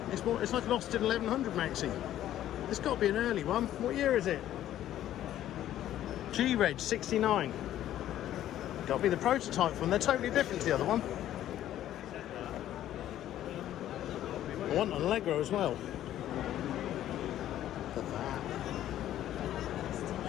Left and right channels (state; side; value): quieter; right; 12.3 dB